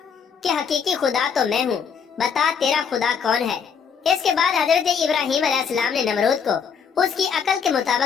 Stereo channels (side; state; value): right; quieter; 6.7 dB